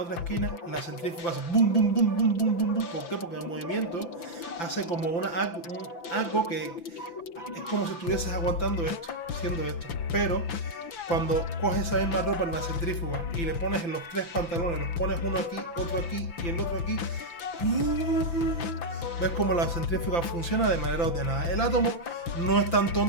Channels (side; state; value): right; late; 5.9 ms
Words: esquina, la centrífuga hace boom, boom, boom, boom, boom, boom, boom. ¿Por qué? Porque el movimiento hace como algo que es como si estuvieses aguantando haciendo esto. Pero cuando coges esa misma ropa en la centrífuga y le pones en los 3 pantalones, los pones uno aquí, otro aquí y el otro aquí, ves como la centrífuga funciona de manera ordenada. El átomo no es tan